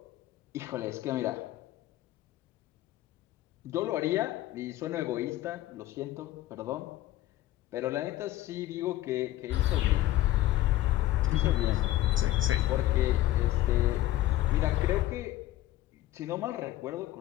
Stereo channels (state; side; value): quieter; right; 15.2 dB